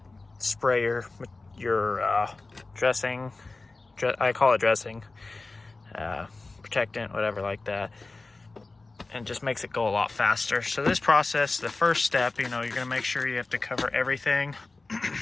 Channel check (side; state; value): right; quieter; 3.5 dB